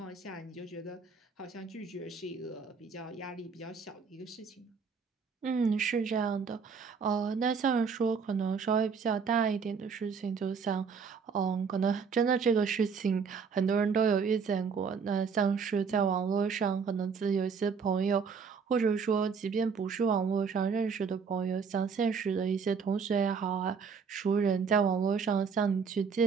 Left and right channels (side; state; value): left; quieter; 5.8 dB